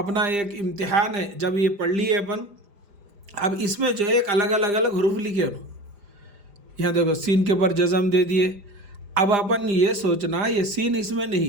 ایک امتحان ہے، جب یہ پڑھ لیے اپن، اب اس میں جو ہے ایک الگ حروف لکھے انہوں، یہاں دیکھو سین کے اوپر جزم دے دیے۔ اب اپن یہ سوچنا یہ سین اس میں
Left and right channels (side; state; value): left; late; 5.0 ms